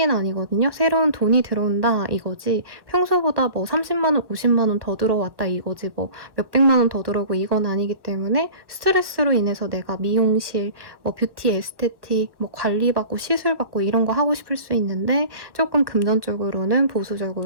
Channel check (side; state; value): left; late; 1.0 ms